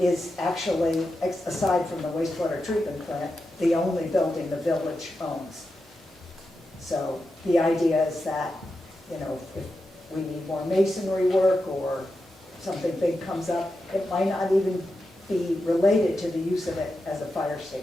actually, aside from the wastewater treatment plant, the only building the village owns. So the idea is that, you know, if we need more masonry work or something big comes up, it might not even be related to the use of it as a fire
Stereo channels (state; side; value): normal; both; correlation 0.89